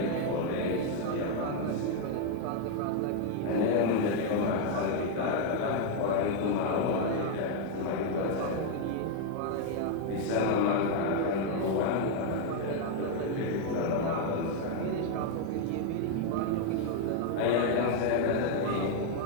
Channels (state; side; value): different; both; correlation 0.00